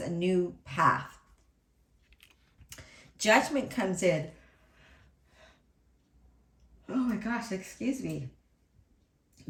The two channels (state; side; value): identical; both; correlation 1.00